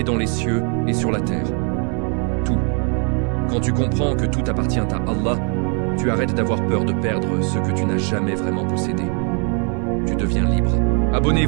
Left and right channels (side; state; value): left; quieter; 38.0 dB